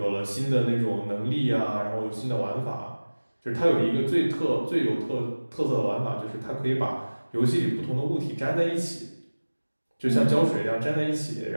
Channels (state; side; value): inverted; both; correlation -1.00